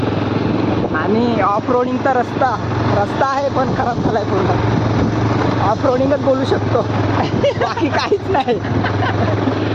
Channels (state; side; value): identical; both; correlation 1.00